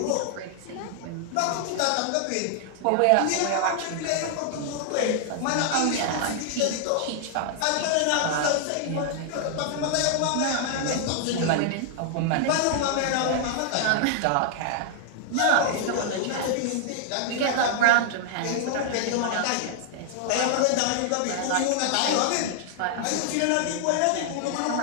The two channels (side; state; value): both; different; correlation 0.00